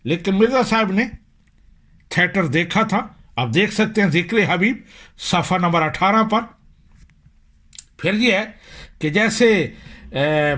لیکن مرزا صاحب نے تھیٹر دیکھا تھا. آپ دیکھ سکتے ہیں ذکر حبیب صفحہ نمبر 18 پر. پھر یہ ہے کہ جیسے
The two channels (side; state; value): both; identical; correlation 1.00